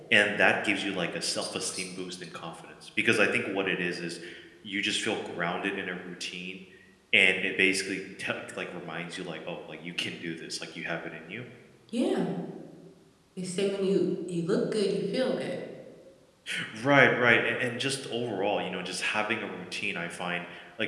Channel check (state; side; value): identical; both; correlation 1.00